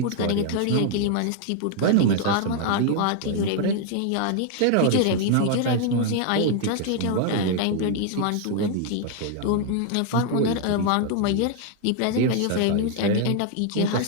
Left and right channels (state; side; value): different; both; correlation 0.00